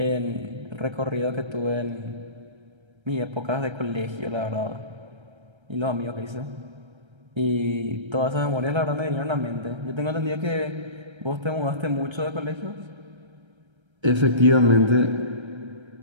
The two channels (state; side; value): late; left; 1.3 ms